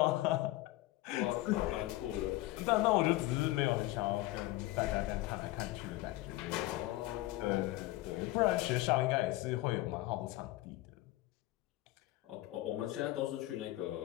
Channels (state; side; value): quieter; right; 17.8 dB